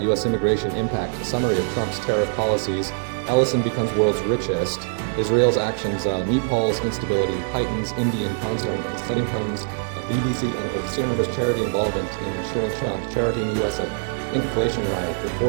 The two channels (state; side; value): silent; left; digital silence